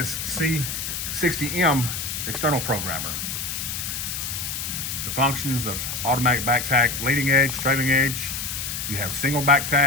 C60M external programmer. The functions of automatic back tack, leading edge, trailing edge. You have single back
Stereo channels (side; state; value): left; noise; hiss, 4 dB below the sound